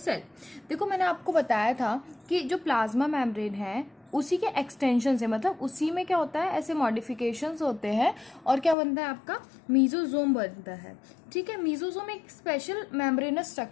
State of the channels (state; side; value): drops out; right; at 8.8 s